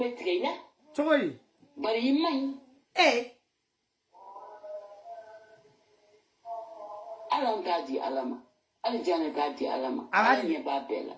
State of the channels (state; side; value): identical; both; correlation 1.00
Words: tigɛ i la cogo di bari i man ɲi ala an t'a di ala ma hali Janɛ t'a di ala ma ala ɲɛ b'a bɛɛ la